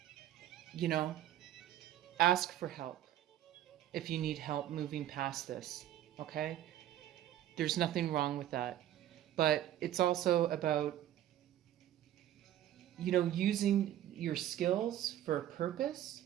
Ask for help if you need help moving past this, okay? There's nothing wrong with that. But it's also about, using your skills for a purpose,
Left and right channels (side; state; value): left; quieter; 12.3 dB